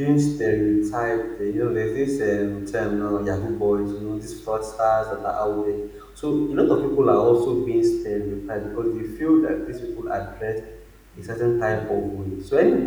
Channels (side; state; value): both; identical; correlation 1.00